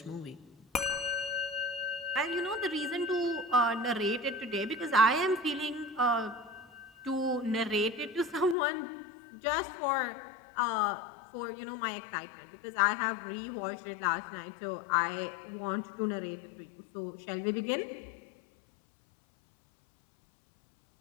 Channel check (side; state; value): right; drops out; at 8.6 s